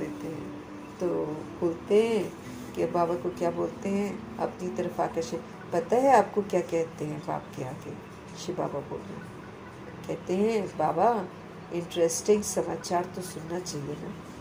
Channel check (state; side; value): identical; both; correlation 1.00